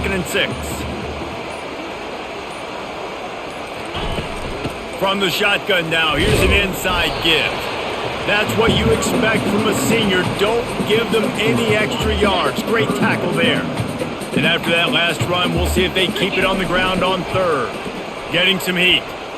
and 6. From the shotgun now, here's an inside give. That's what you expect from a senior. Don't give them any extra yards. Great tackle there. And after that last run, we'll see if they keep it on the ground on 3rd. Getting some heat.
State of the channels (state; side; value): identical; both; correlation 1.00